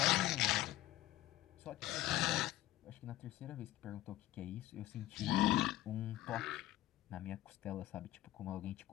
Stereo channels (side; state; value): right; quieter; 15.1 dB